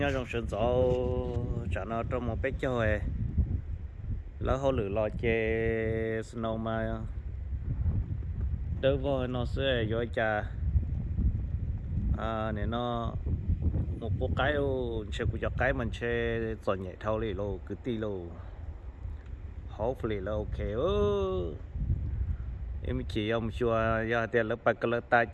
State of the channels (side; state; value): both; identical; correlation 1.00